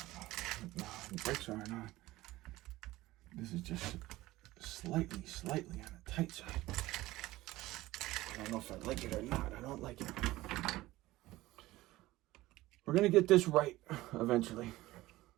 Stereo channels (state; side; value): quieter; left; 17.7 dB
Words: know. No, the brakes aren't on. This is just slightly on the tight side. I don't know if I like it or not. I don't like it. We're going to get this right eventually.